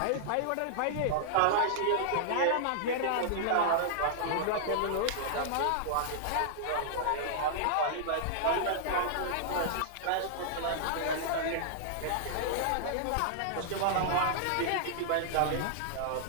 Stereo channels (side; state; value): both; different; correlation -0.01